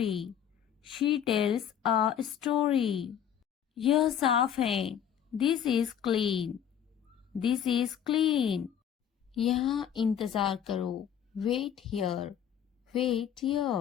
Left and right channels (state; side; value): quieter; right; 9.1 dB